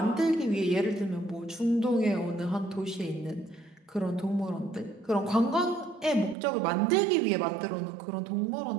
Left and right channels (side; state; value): left; drops out; at 6.4 s